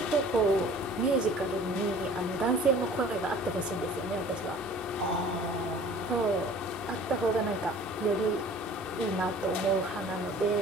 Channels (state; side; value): normal; both; correlation 0.48